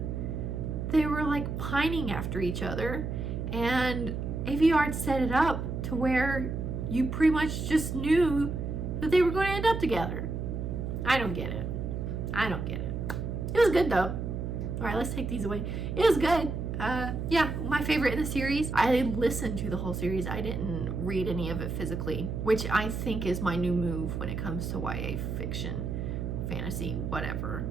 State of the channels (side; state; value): right; noise; hum, 3 dB below the sound